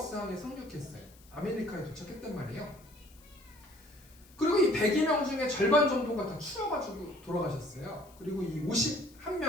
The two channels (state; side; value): noise; left; hiss, 26 dB below the sound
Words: 항에 상륙했어요. 아메리카에 도착했단 말이에요. 그리고 이 102명 중에 절반 정도가 다 추워가지고 돌아가셨어요. 그리고 이